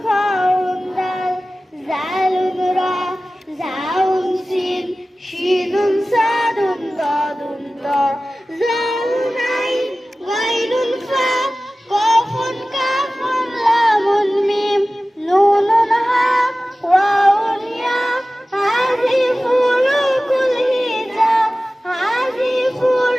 খাউন দাল জালুন রা জাউন সিন শিনুন সাদুন দাদুন তা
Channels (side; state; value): both; normal; correlation 0.96